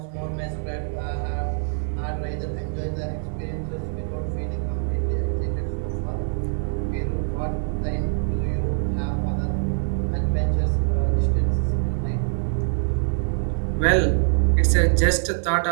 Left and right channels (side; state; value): left; silent; digital silence